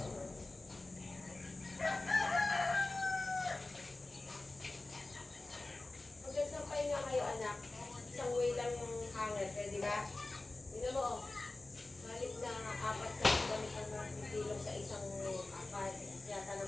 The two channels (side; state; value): right; quieter; 3.1 dB